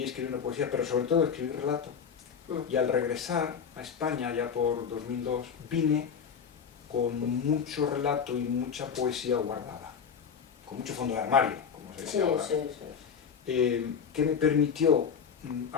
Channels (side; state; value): right; quieter; 6.9 dB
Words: escribiendo poesía, pero sobre todo escribí relato. Y al regresar a España, ya por 2002, vine con mucho relato y mucha poesía guardada, con mucho fondo de armario, como se dice ahora. Que me permitió